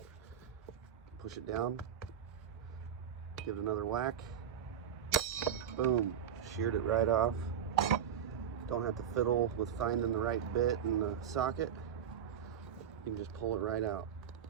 Push it down. Give it another whack. Boom. Sheared it right off. Don't have to fiddle with finding the right bit in the socket. You can just pull it right out.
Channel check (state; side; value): quieter; left; 8.8 dB